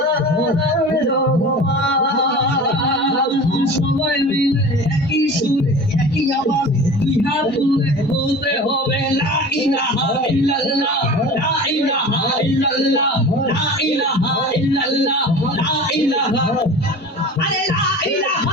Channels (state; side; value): normal; both; correlation 0.37